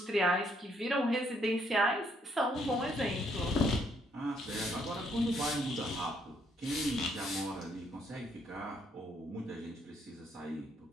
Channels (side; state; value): both; normal; correlation 0.70